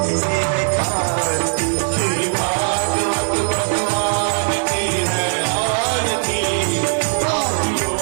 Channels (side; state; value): left; silent; digital silence